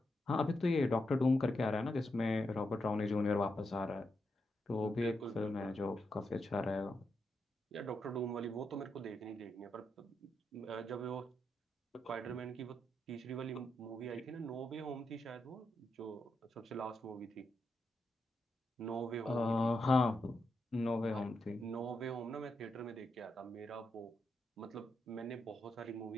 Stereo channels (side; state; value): both; normal; correlation 0.84